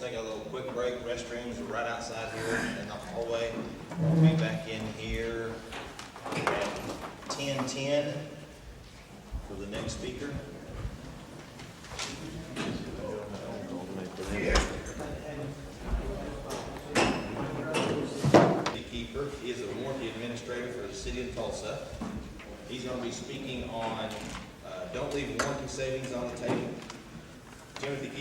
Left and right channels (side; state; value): both; identical; correlation 1.00